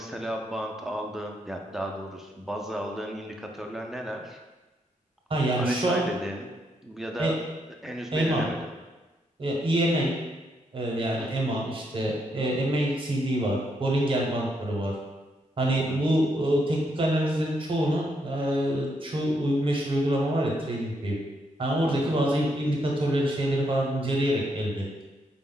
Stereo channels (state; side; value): normal; both; correlation 0.77